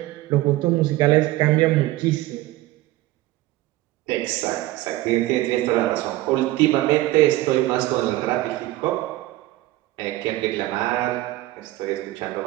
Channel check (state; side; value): quieter; left; 17.1 dB